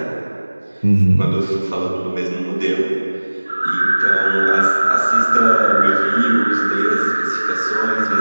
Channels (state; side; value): inverted; both; correlation -1.00